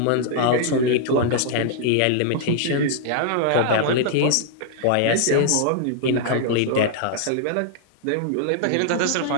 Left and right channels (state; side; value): different; both; correlation -0.01